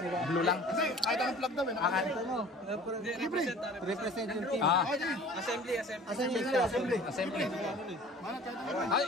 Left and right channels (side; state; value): both; normal; correlation 0.46